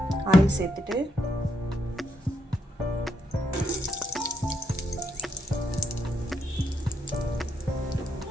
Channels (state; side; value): normal; both; correlation 0.79